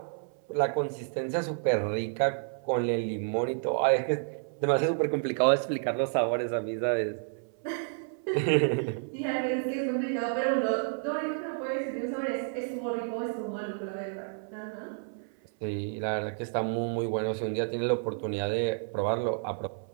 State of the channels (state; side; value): silent; left; 56 dB below the other